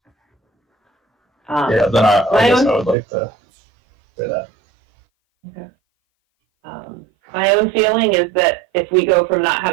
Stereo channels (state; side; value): drops out; left; at 3.0 s